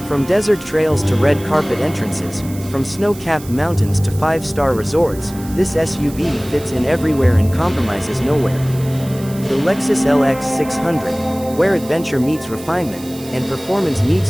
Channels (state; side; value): noise; right; hiss, 18 dB below the sound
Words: From desert trails to red carpet entrances, from snow-capped mountains to 5-star resorts, this SUV fits in everywhere and compromises nowhere. The Lexus LX 600, where adventure meets refinement, and performance meets